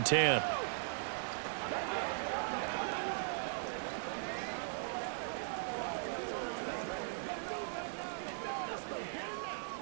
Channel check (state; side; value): silent; left; 52 dB below the other